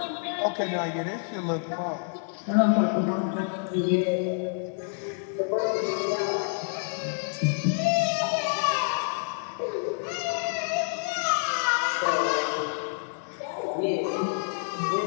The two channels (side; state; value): right; silent; 57 dB below the other